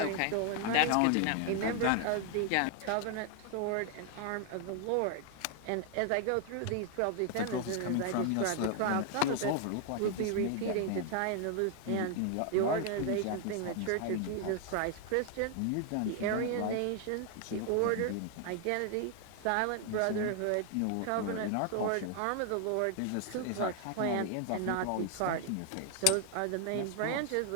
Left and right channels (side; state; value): both; different; correlation 0.00